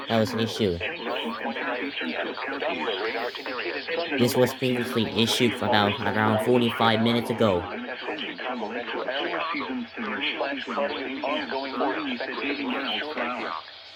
that was issued. This was previously issued about around 45 minutes ago.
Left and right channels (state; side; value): identical; both; correlation 1.00